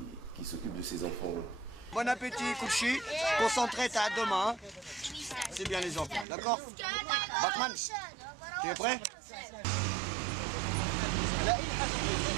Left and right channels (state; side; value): drops out; left; at 6.2 s